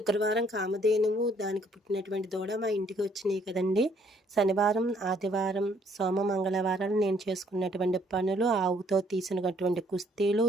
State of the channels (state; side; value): normal; both; correlation 0.65